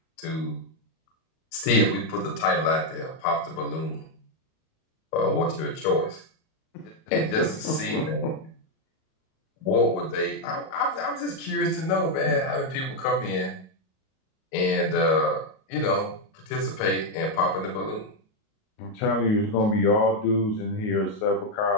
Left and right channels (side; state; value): right; late; 37 ms